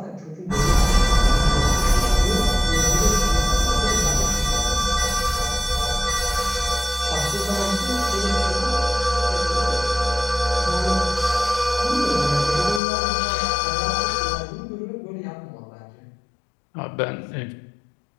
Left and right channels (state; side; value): drops out; right; at 12.8 s